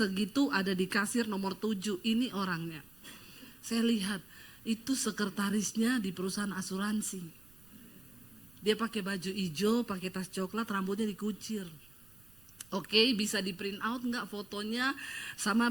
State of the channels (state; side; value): noise; right; rumble, 26 dB below the sound